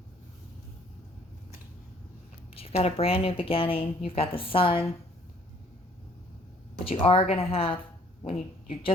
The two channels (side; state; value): both; normal; correlation 0.60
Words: You've got a brand new beginning. You've got the sun. But you are going to have, you're